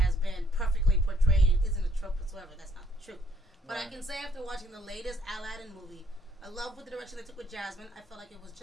been perfectly portrayed and isn't a trope whatsoever. That's not the truth. But I Right. can say after watching the latest Aladdin movie, I love what the direction they took with Jasmine. I felt like it was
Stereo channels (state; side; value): normal; both; correlation 0.66